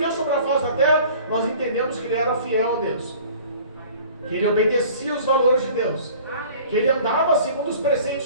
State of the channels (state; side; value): inverted; both; correlation -0.48